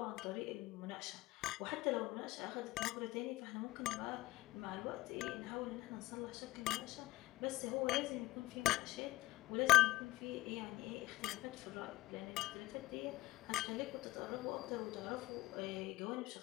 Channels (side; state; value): right; quieter; 18.1 dB